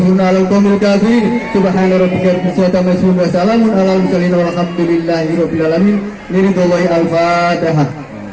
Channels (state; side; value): identical; both; correlation 1.00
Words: 'alal qaumil kafirin. Subhana rabbika rabbil izzati amma yasifun wa salamun 'alal mursalin walhamdulillahi rabbil alamin. Liridwallahi al-Fatihah.